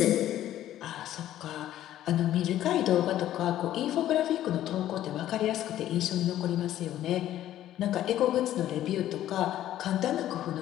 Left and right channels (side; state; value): right; quieter; 12.7 dB